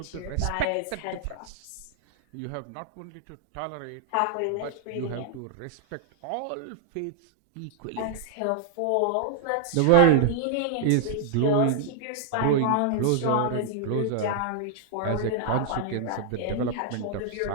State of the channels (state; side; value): different; both; correlation -0.01